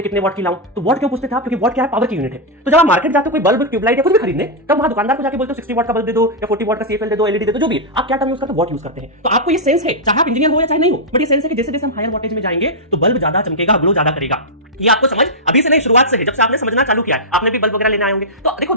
कितने वॉट की लाऊं, तो वॉट क्यों पूछते थे आप, क्योंकि वॉट क्या है, पावर की यूनिट है। तो जब आप मार्केट जाते हो कोई बल्ब ट्यूबलाइट या कुछ भी खरीदने, तब वहां दुकानदार को जाके बोलते हो 60 वॉट का बल्ब दे दो या 40 वॉट का सीएफएल दे दो, एलईडी दे दो, जो भी आप क्या टर्म यूज करते हो, वॉट यूज करते हैं। तो आपको ये सेंस है, चाहे आप इंजीनियर हो या चाहे नहीं हो, बट ये सेंस है कि जैसे जैसे हम हायर वोल्टेज में जाएंगे तो बल्ब ज्यादा चमकेगा, ग्लो ज्यादा करेगा। ये आपको समझ अभी से नहीं, शुरुआत से है, जब से आपने समझना चालू किया है, आपने भी बल्ब वगैरह लेने आए होंगे। तो देखो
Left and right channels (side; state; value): both; normal; correlation -0.07